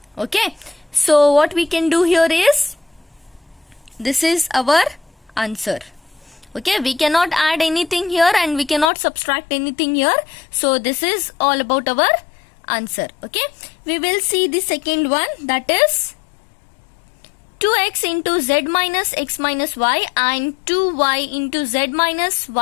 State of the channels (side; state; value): right; drops out; at 8.9 s